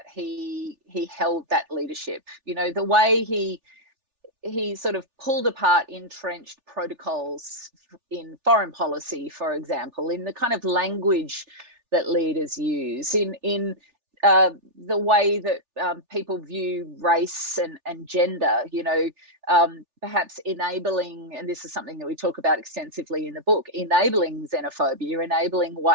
he held that leadership, the way he sort of pulled apart entrenched protocols in foreign policy, for example, in the kind of language that leaders use, in the way that people view race and gender, perhaps enabling, and this is something that we talk about extensively in the book, enabling xenophobia, enabling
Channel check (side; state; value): left; late; 3.4 ms